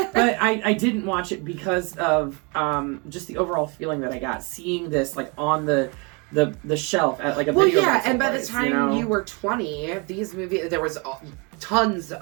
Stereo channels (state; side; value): quieter; left; 31.3 dB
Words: I didn't watch it because of just the overall feeling that I got seeing this on the shelf at a video and by the time you were 20, these movies, there was tons